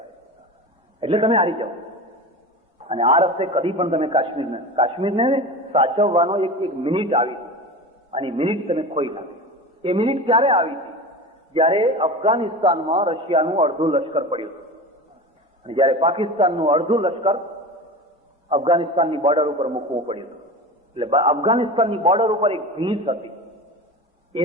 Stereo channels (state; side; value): normal; both; correlation 0.30